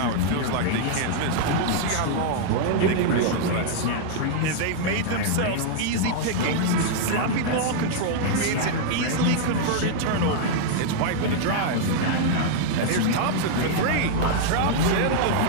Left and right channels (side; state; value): both; different; correlation -0.01